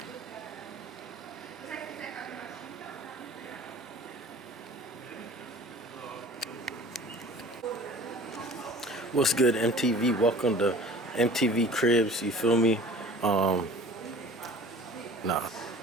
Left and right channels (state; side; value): normal; both; correlation 0.45